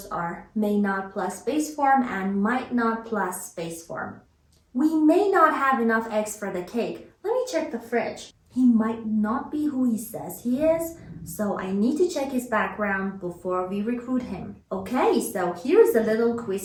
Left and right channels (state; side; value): identical; both; correlation 1.00